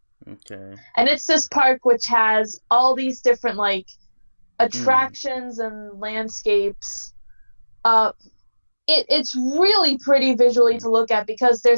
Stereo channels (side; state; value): both; inverted; correlation -1.00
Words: Okay. And it's this park which has all these different like attractions and landscapes. It's really pretty visually to look at because